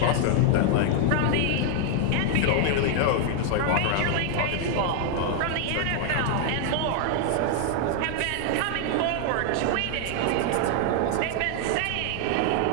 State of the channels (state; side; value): different; both; correlation 0.00